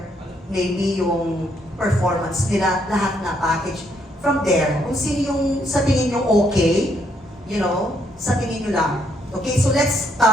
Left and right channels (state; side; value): normal; both; correlation 0.73